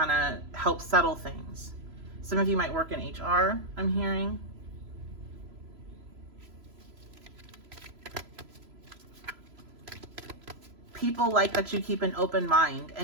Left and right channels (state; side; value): late; left; 3.0 ms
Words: of help settle things. Some of you might work in HR, I'm hearing. People like that you keep an open mind